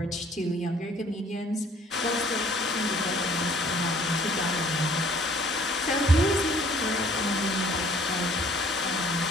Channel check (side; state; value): both; normal; correlation 0.57